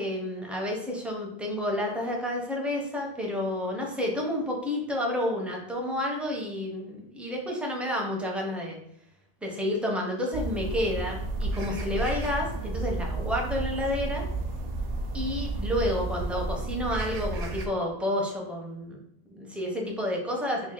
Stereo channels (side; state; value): both; normal; correlation 0.39